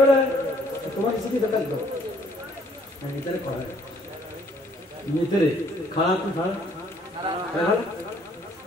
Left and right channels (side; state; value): both; normal; correlation 0.62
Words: তোমার কিছু কি দরকার? ভিতরে করে ভিতরে খারাপ খারাপ।